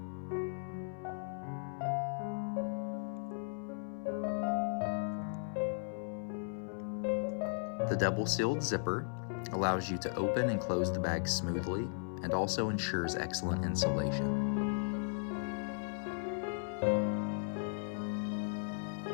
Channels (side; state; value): right; silent; 53 dB below the other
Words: The double-sealed zipper allows you to open and close the bag smoothly and also ensures excellent insulation.